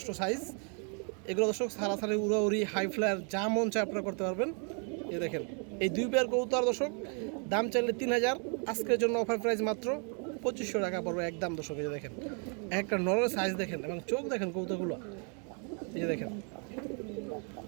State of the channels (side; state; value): left; quieter; 38.9 dB